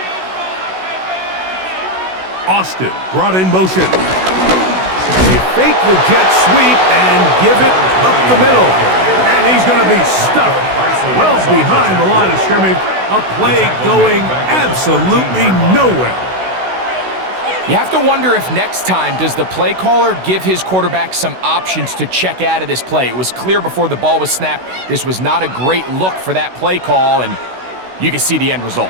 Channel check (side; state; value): left; late; 16 ms